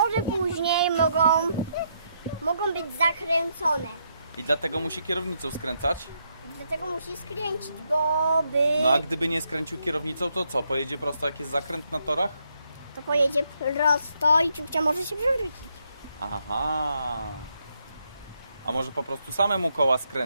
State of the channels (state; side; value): inverted; both; correlation -0.77